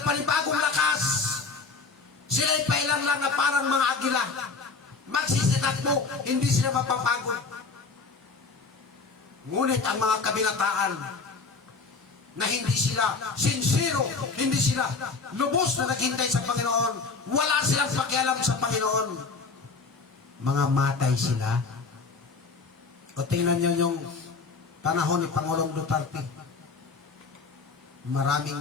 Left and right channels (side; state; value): right; quieter; 4.4 dB